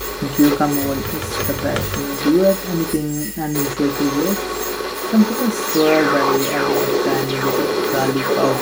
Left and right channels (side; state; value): both; identical; correlation 1.00